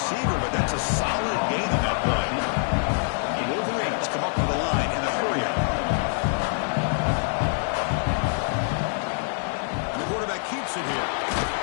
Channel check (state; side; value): silent; right; 62 dB below the other